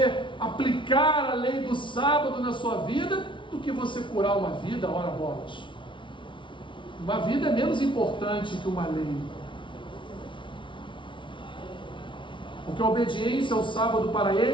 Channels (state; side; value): late; right; 0.24 ms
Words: aplicar a lei do sábado na sua vida, do que você curar uma vida, ora bolas. Uma vida é menos importante que uma lei. Porque a obediência ao sábado para